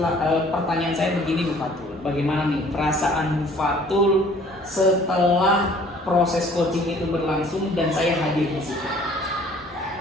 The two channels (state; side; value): normal; both; correlation 0.55